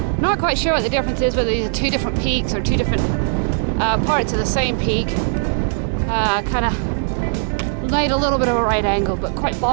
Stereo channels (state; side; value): silent; left; digital silence